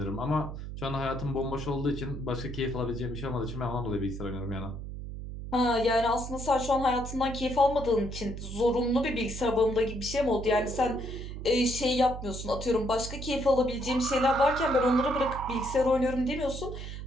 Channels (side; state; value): right; noise; hum, 8 dB below the sound